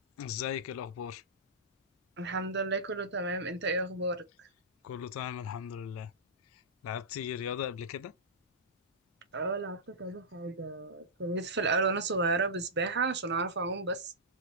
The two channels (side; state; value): both; normal; correlation -0.15